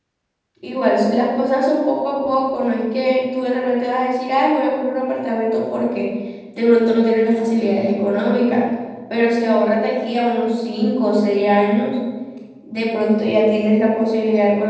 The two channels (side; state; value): both; identical; correlation 1.00